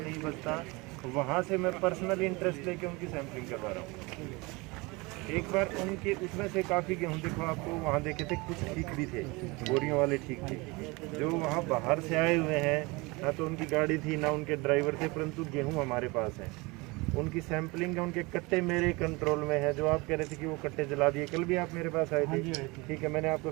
बचता, वहाँ से मैं पर्सनल इंटरेस्ट लेके उनकी सैंपलिंग करवा रहा हूँ। एक बार उनके उसमें से काफ़ी गेहूँ देखो, आपको वहाँ देखे थे कुछ ठीक भी थे, बोरियों वाले ठीक थे। जो वहाँ बाहर से आए हुए हैं, ना तो उनकी गाड़ी थी ना उनके ड्राइवर थे, परंतु गेहूँ हमारे पास है। उनकी सैंपलिंग है, उनके कट्टे मेरे कंट्रोल में है। जो आप कह रहे थे कि वो कट्टे जला दिए, कल भी आप मेरे पास आए थे, ठीक है, मैंने आपको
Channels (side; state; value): left; quieter; 25.1 dB